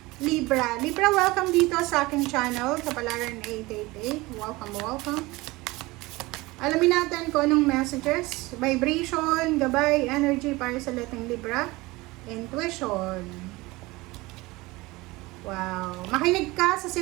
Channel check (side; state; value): left; quieter; 21.5 dB